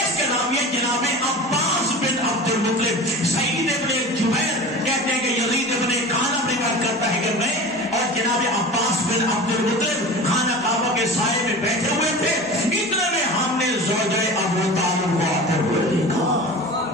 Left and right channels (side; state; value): both; normal; correlation 0.35